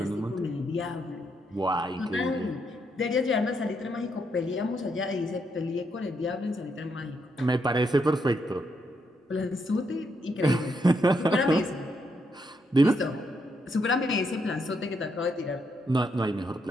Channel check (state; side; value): normal; both; correlation 0.78